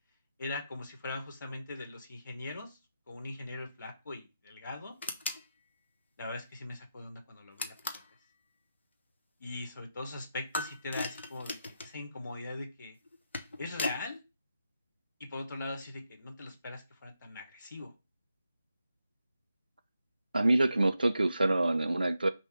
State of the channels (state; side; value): inverted; both; correlation -0.87